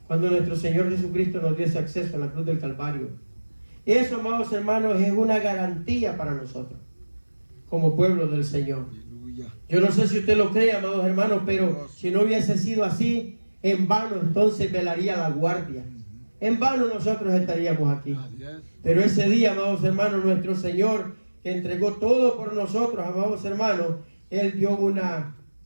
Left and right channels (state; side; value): inverted; both; correlation -1.00